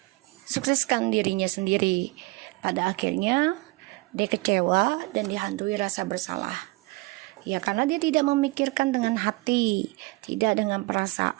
sukseskan dirinya sendiri. Pada akhirnya dia kecewa dan dihantui rasa bersalah ya, karena dia tidak memikirkan dengan hati, tidak dengan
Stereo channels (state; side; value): quieter; left; 24.3 dB